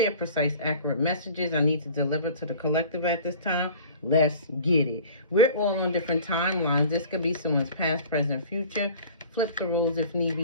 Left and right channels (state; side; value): inverted; both; correlation -0.44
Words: precise, accurate messages I need to deliver to the collective at this time. Let's get it. We're all on different timelines. This could be someone's past, present, future. Flip the rules if need